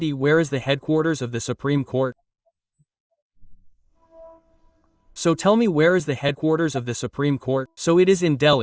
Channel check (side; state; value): both; identical; correlation 1.00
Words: Where is the headquarters of the Supreme Court? So tell me, where is the headquarters of the Supreme Court? So it is in